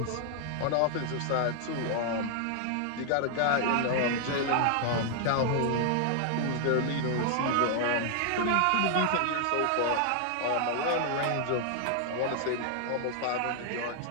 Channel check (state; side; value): different; both; correlation 0.00